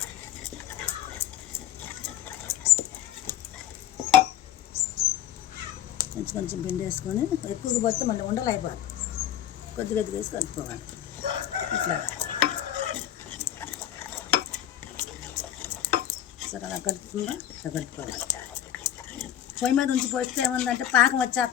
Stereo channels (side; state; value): right; quieter; 11.1 dB